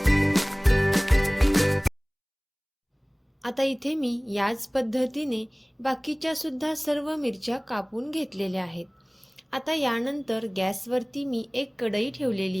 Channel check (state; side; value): identical; both; correlation 1.00